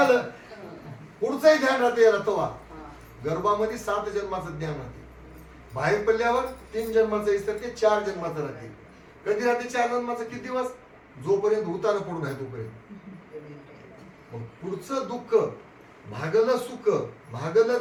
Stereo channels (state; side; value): identical; both; correlation 1.00